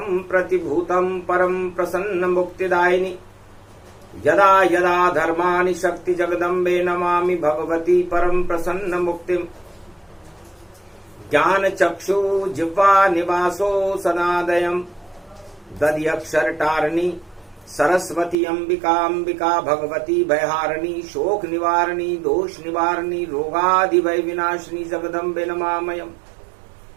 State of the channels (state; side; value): drops out; left; at 18.4 s